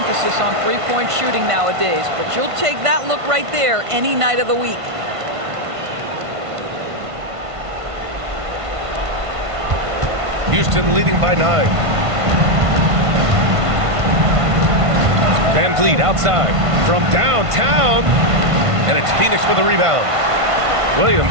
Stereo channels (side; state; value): left; late; 1.5 ms